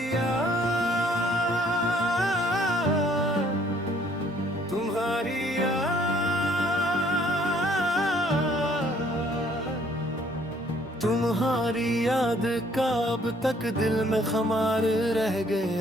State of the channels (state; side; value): normal; both; correlation 0.62